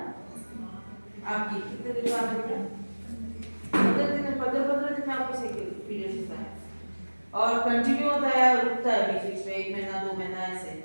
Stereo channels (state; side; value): inverted; both; correlation -1.00